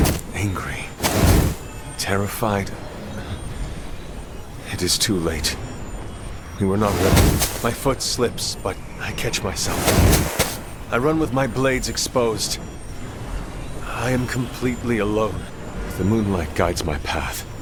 Angry. Terrified. It is too late. We were not ready. My foot slips, but I catch myself. I run with my blades exposed. I am completely alone. The moonlight guides my path.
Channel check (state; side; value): identical; both; correlation 1.00